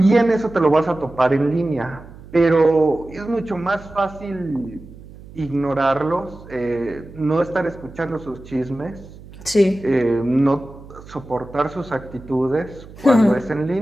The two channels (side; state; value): right; noise; hum, 18 dB below the sound